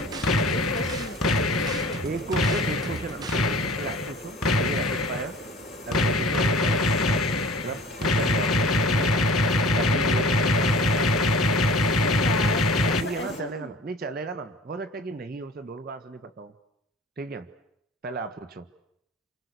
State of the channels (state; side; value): normal; both; correlation 0.45